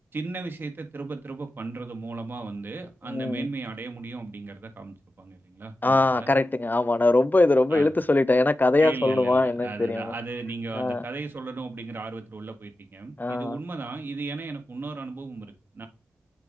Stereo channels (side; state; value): both; normal; correlation 0.92